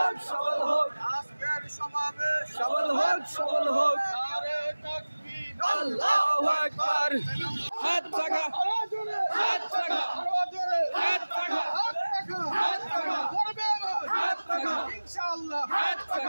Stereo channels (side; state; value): both; inverted; correlation -1.00